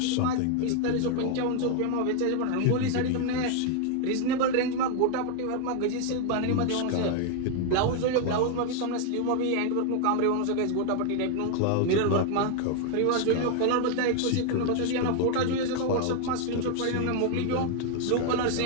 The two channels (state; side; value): different; both; correlation 0.00